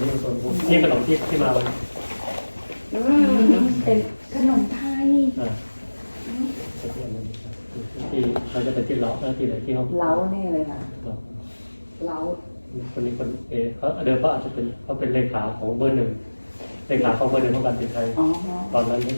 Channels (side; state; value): both; inverted; correlation -1.00